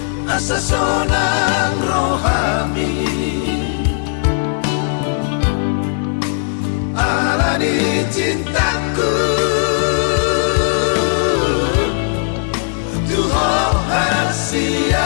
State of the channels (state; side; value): silent; right; digital silence